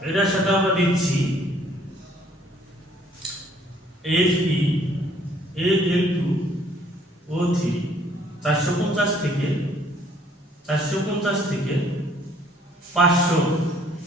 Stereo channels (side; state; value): both; normal; correlation 0.61